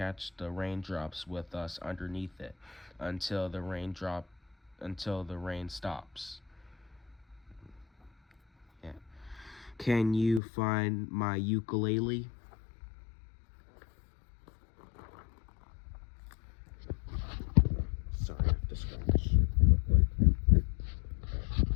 the raindrops with us underneath it until the rain stops. Yeah. Can you find my ukulele? Sorry, I have to scratch real quick.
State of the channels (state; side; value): drops out; right; at 10.4 s